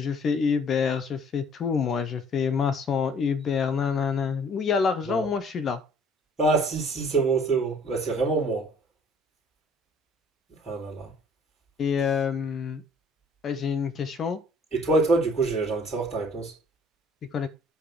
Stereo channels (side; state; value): both; normal; correlation 0.56